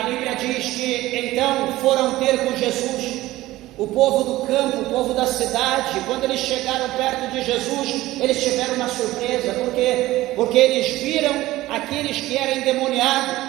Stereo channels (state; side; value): quieter; left; 16.9 dB